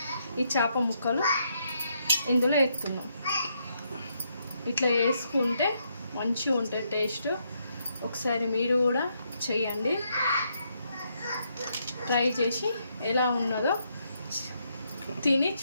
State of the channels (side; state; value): both; inverted; correlation -0.77